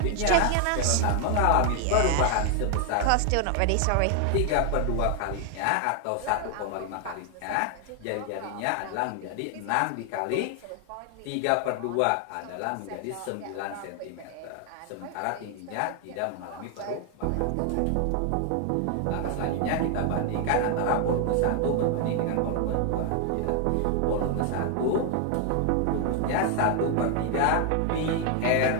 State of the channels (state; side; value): different; both; correlation 0.00